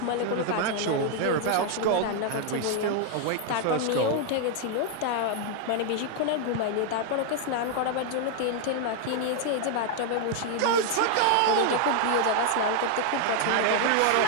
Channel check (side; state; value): both; different; correlation 0.00